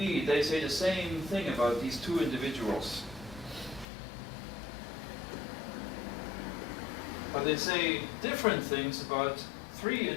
they say the same thing about these 2 individuals. But they say different things about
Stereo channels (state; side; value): drops out; right; at 3.9 s